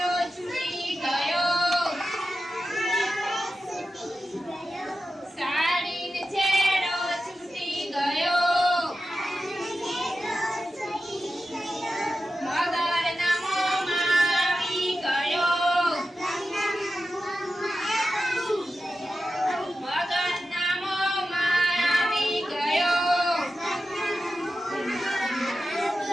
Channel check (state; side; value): normal; both; correlation 0.92